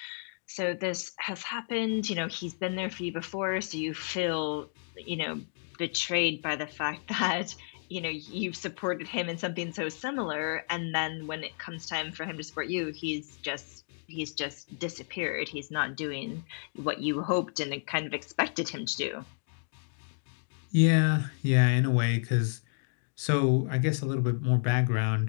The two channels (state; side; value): silent; right; digital silence